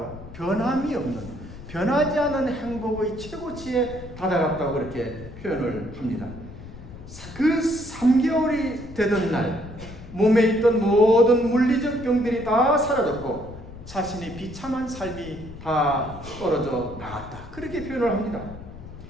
변함이 없는, 변하지 않은 행복의 최고치에 다다랐다고 그렇게 표현을 합니다. 그 3개월이 되던 날 몸에 있던 모든 물리적 병들이 다 사라졌고 자신이 비참한 삶이 다 떨어져 나갔다. 그렇게 표현을 합니다.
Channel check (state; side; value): noise; left; rumble, 14 dB below the sound